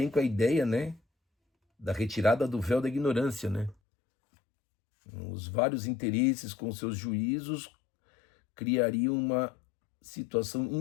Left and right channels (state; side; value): drops out; right; at 3.8 s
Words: com a ideia, né, da retirada do véu da ignorância, né? Os vários interesses com seus juízos criariam uma situação